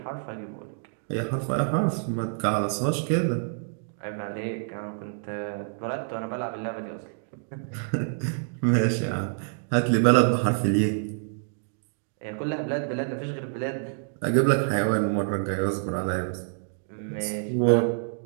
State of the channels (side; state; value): left; silent; digital silence